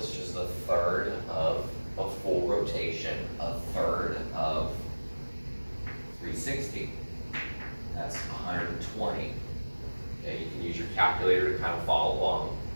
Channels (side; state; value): both; inverted; correlation -1.00